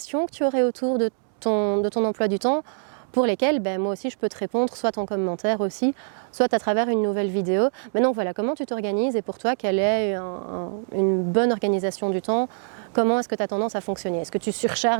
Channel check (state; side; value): silent; left; digital silence